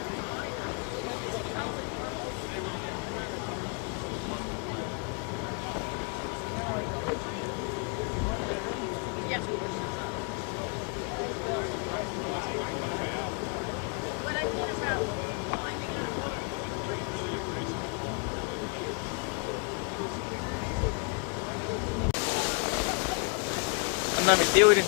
Yeah. What I mean about climbing. Anda mi tío, miren,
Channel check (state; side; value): quieter; right; 36.8 dB